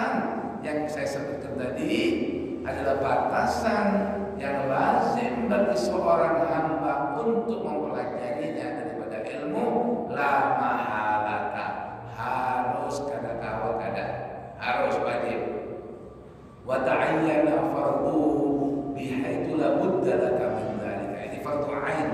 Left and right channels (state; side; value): identical; both; correlation 1.00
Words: yang saya sebutkan tadi, adalah batasan yang lazim bagi seorang hamba untuk mempelajarinya daripada ilmu la mahalata. Harus kada kawal kada, harus wajib. Wa ta'ayyana fardu bihaitsu la budda laka min dzalika. Ini fardu ain,